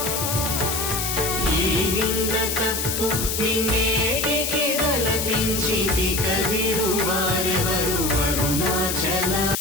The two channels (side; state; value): left; noise; hiss, 1 dB below the sound